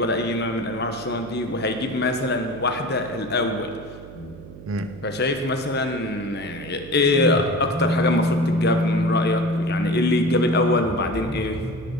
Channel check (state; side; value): noise; right; hum, 16 dB below the sound